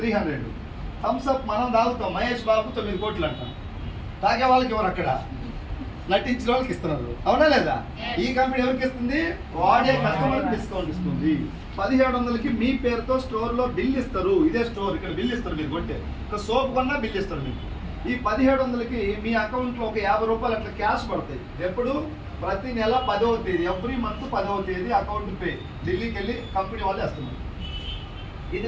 300. థమ్స్ అప్ మనం తాగుతాం, మహేష్ బాబు 9 కోట్లు అంటాం. తాగే వాళ్ళకి ఎవరు అక్కడ నటించిన వాళ్ళకి ఇస్తున్నారు, అవునా లేదా? ఈ కంపెనీ ఎవరికి ఇస్తుంది? వాడే కస్టమర్కి డిస్కౌంట్ ఇస్తుంది. 1700కి మీ పేరుతో స్టోర్లో బిల్ ఇస్తారు. ఇదే స్టోర్, ఇక్కడ బిల్ ఇస్తారు. మీరు కొట్టే ఒక సోప్ కొన్నా బిల్ ఇస్తారు మీకు. ఈ 1700కి మీ అకౌంట్లో ఒక 50 రూపాయలు అట్లా క్యాష్ పడతాయి. ఎప్పుడు? ప్రతి నెల 10వ తేదీ, ఎవ్రీ మంత్ 10వ తేదీ అకౌంట్ పే ఢిల్లీకి వెళ్ళి కంపెనీ వాళ్ళు వేస్తున్నారు. ఇది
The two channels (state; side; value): identical; both; correlation 1.00